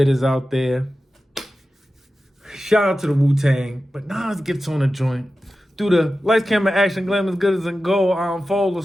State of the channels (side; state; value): both; normal; correlation 0.93